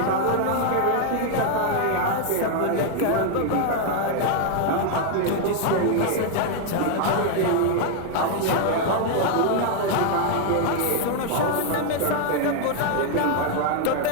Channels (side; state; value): both; different; correlation 0.00